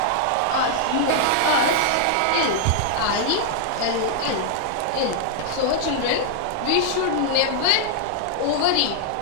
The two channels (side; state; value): both; different; correlation -0.01